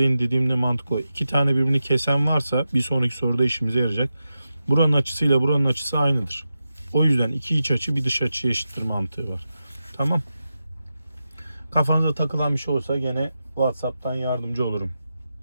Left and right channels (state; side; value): inverted; both; correlation -0.90